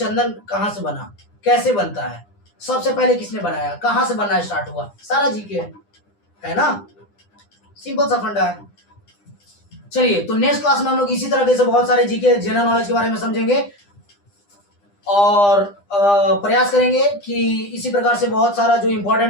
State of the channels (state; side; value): late; right; 9.9 ms